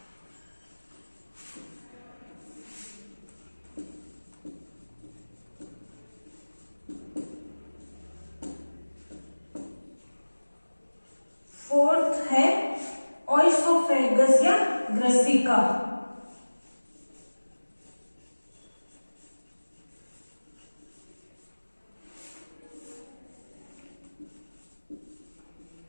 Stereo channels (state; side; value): inverted; both; correlation -1.00